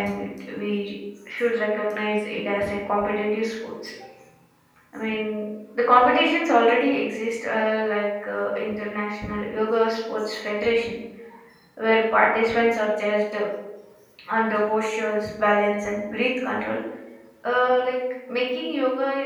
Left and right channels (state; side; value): identical; both; correlation 1.00